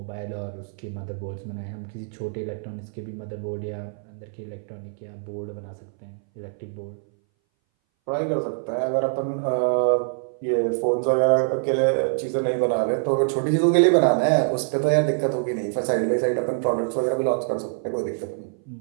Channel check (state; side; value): silent; left; 60 dB below the other